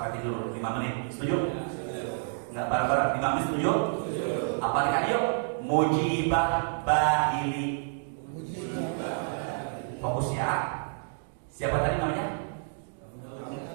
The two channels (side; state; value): left; silent; digital silence